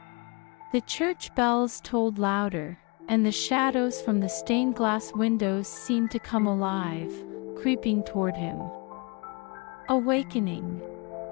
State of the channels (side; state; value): right; quieter; 30.5 dB